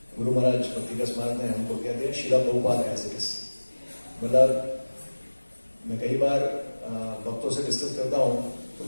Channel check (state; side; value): inverted; both; correlation -1.00